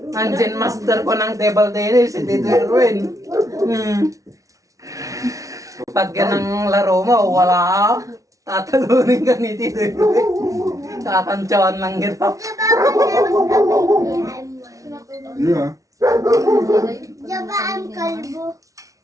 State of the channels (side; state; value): left; late; 0.16 ms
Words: Zen master ko ng table tennis, si Tito Erwin. Pag ganang laro mo, wala ka, tatalunin ka ni Tito Erwin. Tatantsawan lang kita. Yeah. Diba ang kalbo?